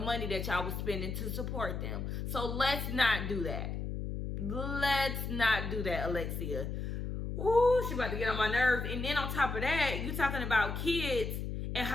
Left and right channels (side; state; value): left; noise; hum, 4 dB below the sound